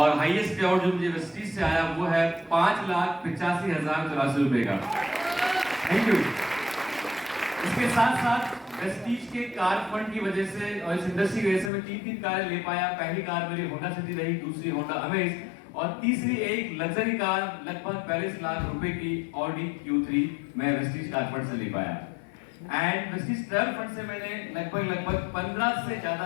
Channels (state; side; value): drops out; right; at 11.7 s